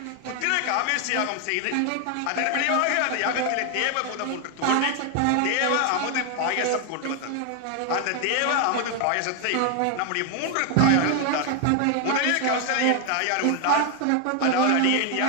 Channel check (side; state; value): both; different; correlation 0.00